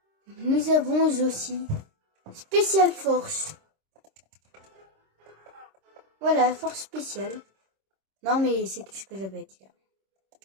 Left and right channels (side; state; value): left; late; 26 ms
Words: Nous avons aussi Special Force. Voilà, force spéciale. Non, mais c'est tout ce que j'avais à dire.